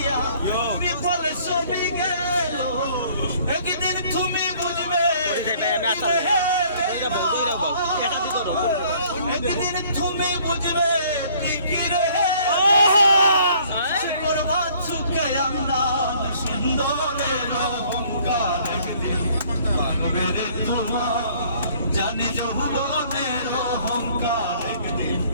বিফল সবই গেল একদিন তুমি বুঝবে একদিন তুমি বুঝবে ঠিকই রে করবা চুকে আন্দাজ সুন্দরের অহংকার একদিন ভাঙবে রে তোমার জানি যৌবনের অহংকার একদিন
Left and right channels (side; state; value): both; inverted; correlation -0.58